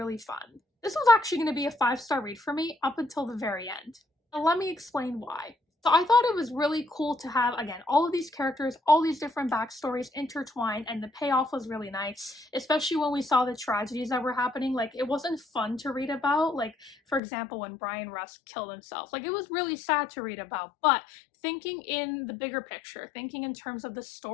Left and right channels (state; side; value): drops out; right; at 17.2 s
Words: fun. This was actually going to be a 5-star read for me up until the very end. Now let me explain why. So I thought it was really cool to have, again, all of these characters, all these different backstories intertwined, and the payoff was really nice, especially when we saw the tragedies that were happening. Like, it wasn't fun to read about, like, for example, when Brian Rusk killed himself. Like, it was really sad to read about, but thinking in the bigger picture, thinking in terms of the